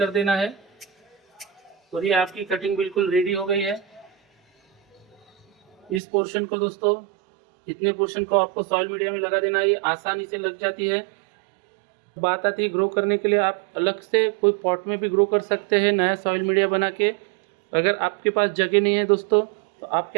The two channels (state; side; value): drops out; left; at 6.0 s